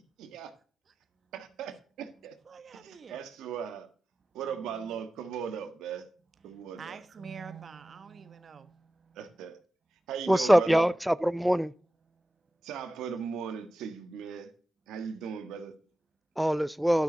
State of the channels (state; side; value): normal; both; correlation 0.94